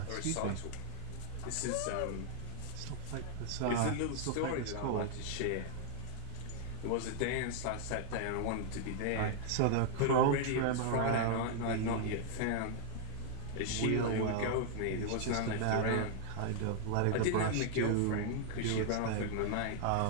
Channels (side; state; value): both; different; correlation 0.00